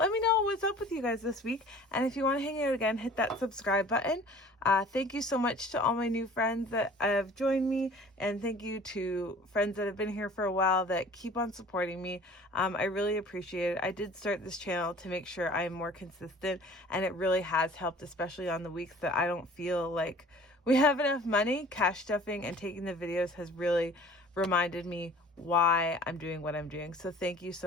me know what's up with you guys this week. And if you want to hang out again, hit that subscribe button. Thank you so much to all my new friends that have joined me. And thank you to friends that have been here for a while that keep on supporting me. I really appreciate it. I did start this channel to make sure I'm more consistent. And it really has helped, especially on the weeks that I don't feel like we have enough money. Cash stuffing and taking the videos has really reminded me why I'm doing what I'm doing. So thank you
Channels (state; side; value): normal; both; correlation 0.47